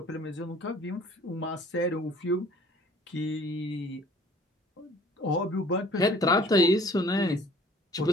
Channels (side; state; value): both; normal; correlation 0.53